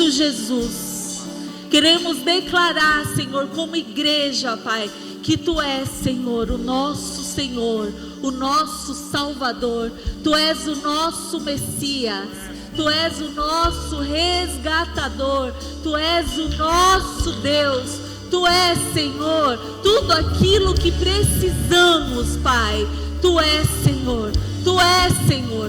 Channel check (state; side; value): identical; both; correlation 1.00